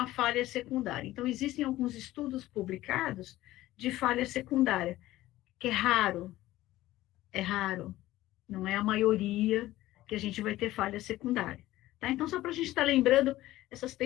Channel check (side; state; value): right; quieter; 16.0 dB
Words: falha secundária. Então, existem alguns estudos publicados de falha secundária, que é raro, não é a maioria que a gente vai ter falha secundária. Tá? Então, só para a gente estar lembrando essas